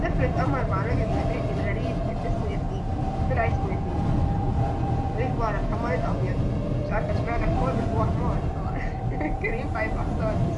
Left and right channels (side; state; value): both; identical; correlation 1.00